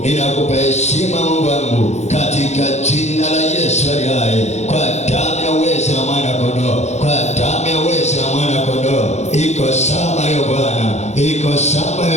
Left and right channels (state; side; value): late; right; 0.32 ms